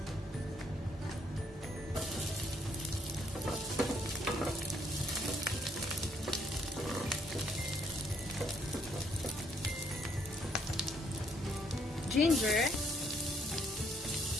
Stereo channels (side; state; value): both; normal; correlation 0.69